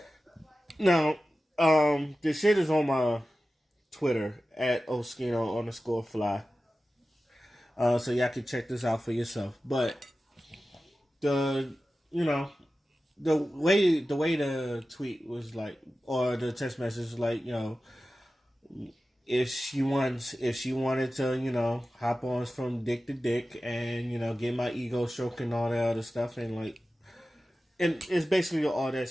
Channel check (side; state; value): both; normal; correlation 0.95